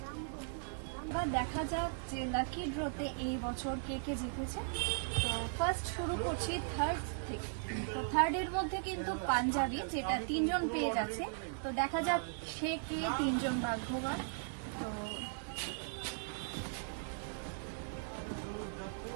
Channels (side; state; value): left; silent; 53 dB below the other